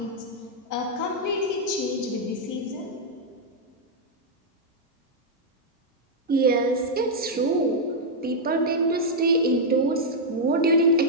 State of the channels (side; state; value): both; normal; correlation -0.04